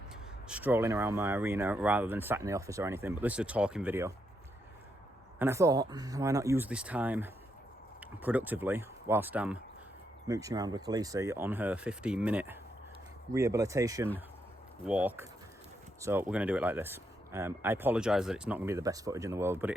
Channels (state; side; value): normal; both; correlation 0.80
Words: strolling around my arena rather than sat in the office or anything, but this is a talking video. And I thought, why not use this time productively whilst I'm mooching around with Khaleesi on her 15-minute rehabilitation walk. So we're going to do it like this. I apologise that it's not going to be the best footage in the world, but it